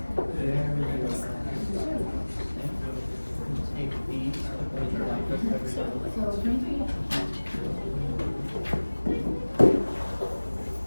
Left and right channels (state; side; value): inverted; both; correlation -1.00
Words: Take these, put it right.